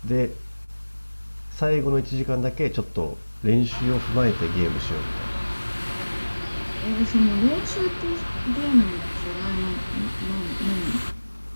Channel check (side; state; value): both; inverted; correlation -1.00